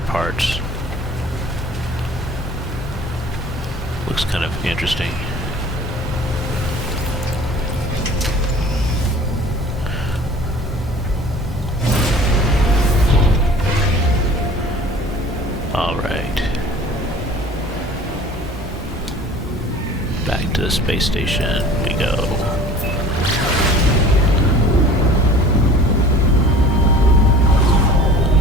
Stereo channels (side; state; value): both; normal; correlation 0.46